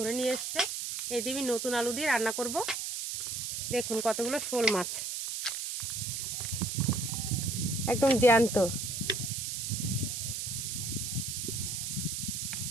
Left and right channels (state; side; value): noise; right; hiss, 3 dB below the sound